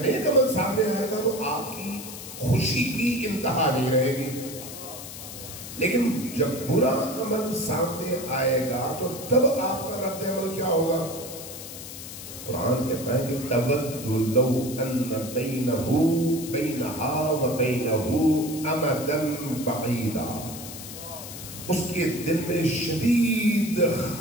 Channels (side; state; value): left; noise; hiss, 11 dB below the sound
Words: نیک عمل سامنے آئے گا تو آپ کی خوشی کی انتہا نہیں رہے گی، لیکن جب برا عمل سامنے آئے گا تو تب آپ کا رد عمل کیا ہوگا؟ قرآن کہتا ہے کہ تَوَدُّ لَوْ أَنَّ بَيْنَهَا وَبَيْنَهُ أَمَدًا بَعِيدًا، اس کے دل میں شدید